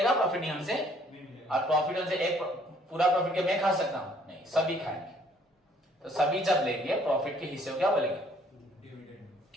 प्रॉफिट नहीं हमसे, और प्रॉफिट हमसे एक पूरा प्रॉफिट के मैं खा सकता हूं नहीं, सभी खाएंगे। तो सभी जब लेंगे प्रॉफिट के हिस्से को क्या बोलेंगे? डिविडेंड।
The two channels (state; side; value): normal; both; correlation 0.61